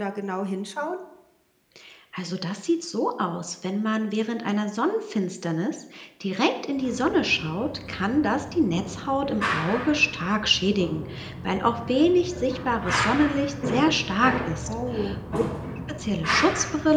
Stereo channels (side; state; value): both; identical; correlation 1.00